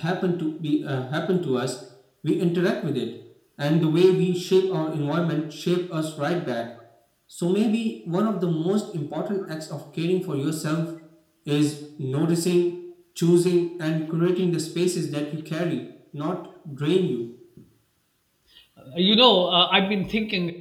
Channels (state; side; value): identical; both; correlation 1.00